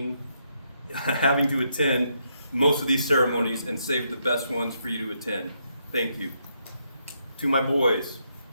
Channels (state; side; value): inverted; both; correlation -0.77